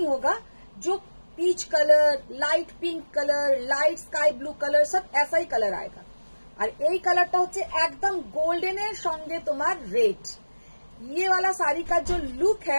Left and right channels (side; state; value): both; inverted; correlation -1.00